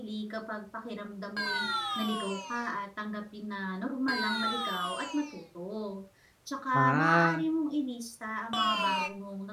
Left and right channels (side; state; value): both; identical; correlation 1.00